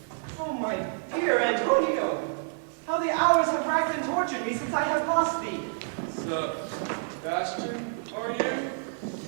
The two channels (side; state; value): left; silent; digital silence